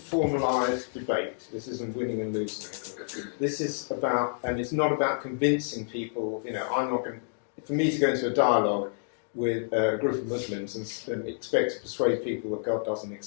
debate. This isn't winning and losing. This is about, and it's not about convincing people. I'm not going. For me to go into a dialogue with a group of Muslims and expect to persuade people that God doesn't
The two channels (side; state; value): right; silent; 59 dB below the other